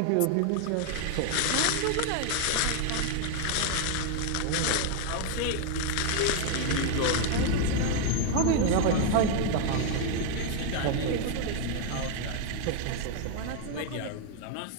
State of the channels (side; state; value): both; different; correlation 0.00